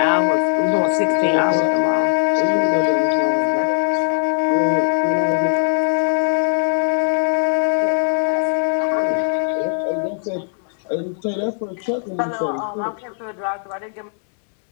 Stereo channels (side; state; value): right; silent; digital silence